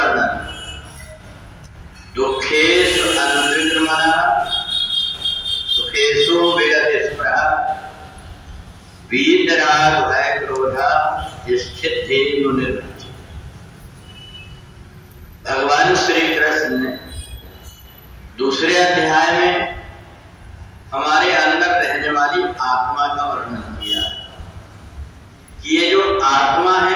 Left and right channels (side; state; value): both; identical; correlation 1.00